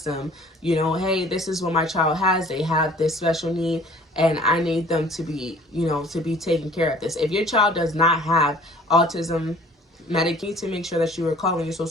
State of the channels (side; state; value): both; normal; correlation 0.51